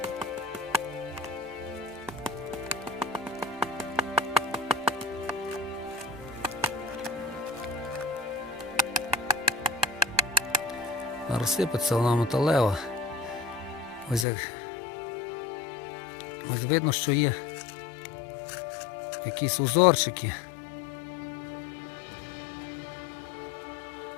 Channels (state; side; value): drops out; right; at 14.2 s